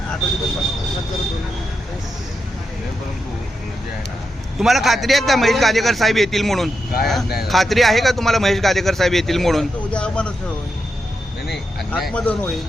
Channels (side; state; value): both; normal; correlation 0.86